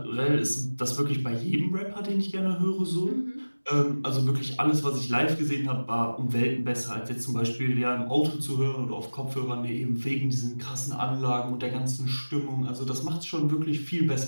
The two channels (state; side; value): inverted; both; correlation -1.00